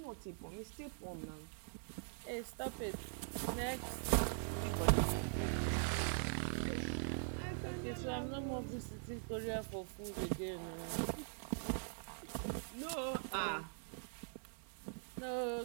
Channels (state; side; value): silent; left; digital silence